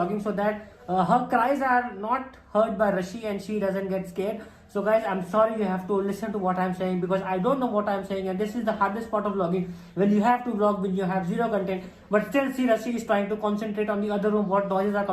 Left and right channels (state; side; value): identical; both; correlation 1.00